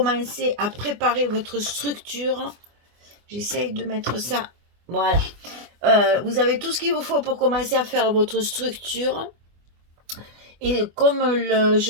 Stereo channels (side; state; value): left; late; 24 ms